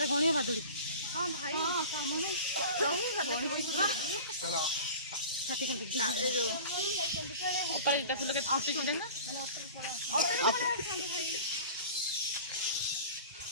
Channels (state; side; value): inverted; both; correlation -0.39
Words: गणिया बादुड़ी हां भाई हां सामने रही गली चलो छाती खाली ए जो ऊपर फूल के फुटी छुले ना